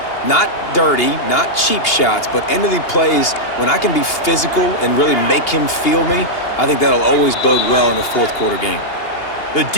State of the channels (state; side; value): late; right; 2.8 ms